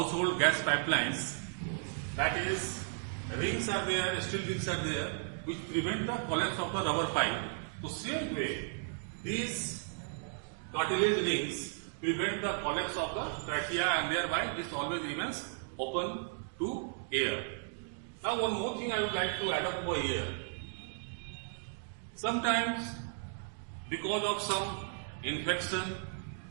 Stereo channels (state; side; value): silent; left; digital silence